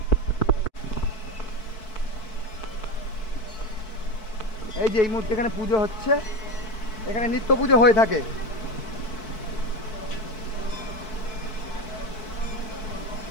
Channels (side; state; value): right; late; 4.6 ms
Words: এই যে এই মুহূর্তে এখানে পুজো হচ্ছে, এখানে নিত্য পুজো হয়ে থাকে।